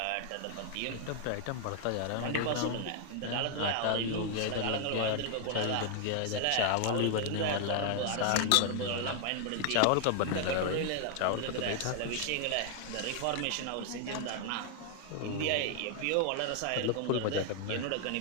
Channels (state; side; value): different; both; correlation 0.00